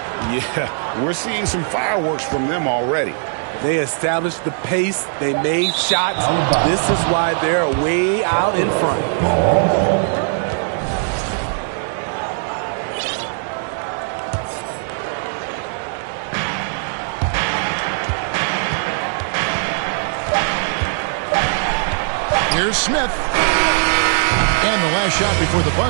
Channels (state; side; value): silent; left; digital silence